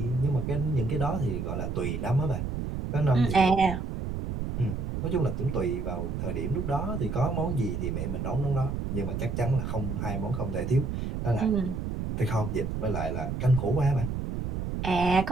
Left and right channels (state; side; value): noise; right; rumble, 3 dB below the sound